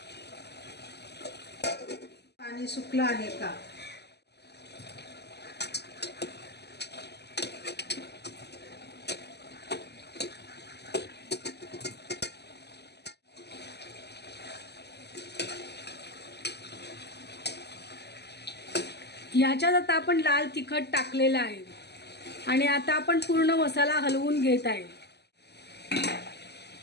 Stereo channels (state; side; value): late; right; 0.49 ms